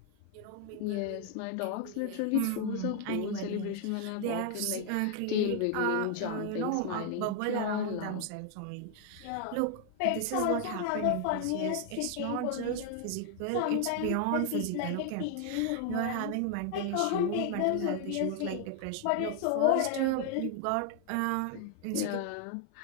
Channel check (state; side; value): different; both; correlation 0.00